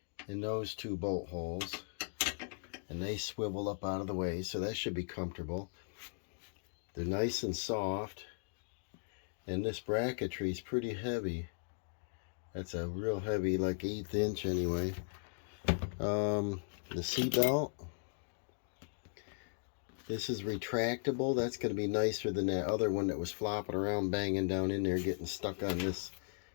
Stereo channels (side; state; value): right; silent; digital silence